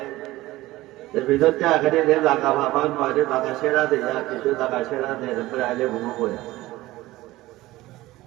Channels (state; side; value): quieter; left; 17.8 dB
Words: ভিতরতে আগে যে জায়গা ভাবান মাঝে জায়গা সেরা দেয়া কিছু জায়গা সেরা দেয় এরপরে আইলে ঘুমো করে